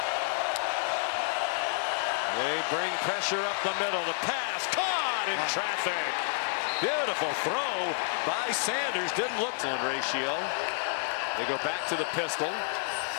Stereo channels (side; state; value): right; silent; digital silence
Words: They bring pressure up the middle. The pass caught in traffic. Beautiful throw by Sanders. Didn't look to ratio. They go back to the pistol.